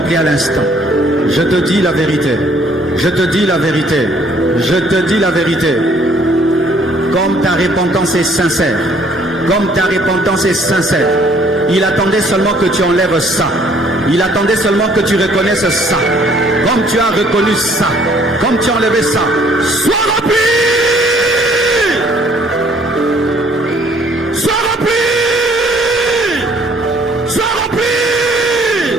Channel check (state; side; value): normal; both; correlation 0.61